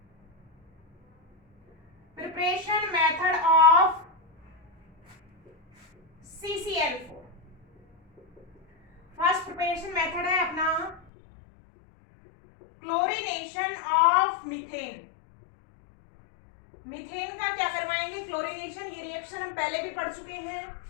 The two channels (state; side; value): drops out; right; at 11.0 s